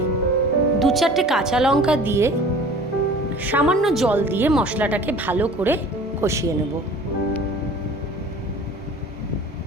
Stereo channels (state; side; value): normal; both; correlation 0.44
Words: 2-4টে কাঁচা লঙ্কা দিয়ে সামান্য জল দিয়ে মশলাটাকে ভালো করে কষিয়ে নেব।